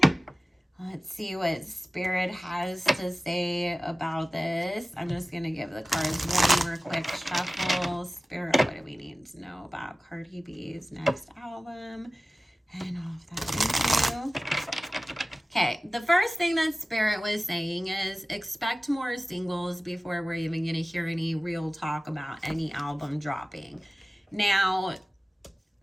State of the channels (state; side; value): normal; both; correlation 0.96